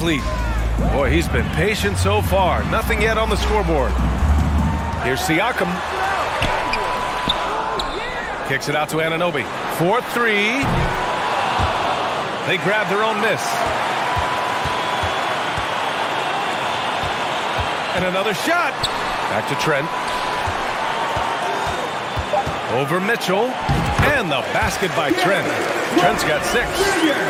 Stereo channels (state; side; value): identical; both; correlation 1.00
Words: Boy, he's been patient so far. Nothing yet on the scoreboard. Here's Siakam. Kicks it out to Anunoby. 4-3. They grab their own miss. And another shot. Back to Trent. Over Mitchell. And the basket by Trent. Trent's got